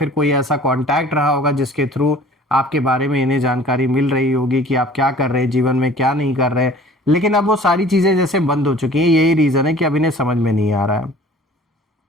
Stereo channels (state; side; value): normal; both; correlation 0.48